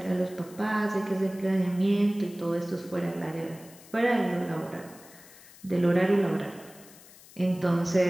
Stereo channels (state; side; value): noise; left; hiss, 22 dB below the sound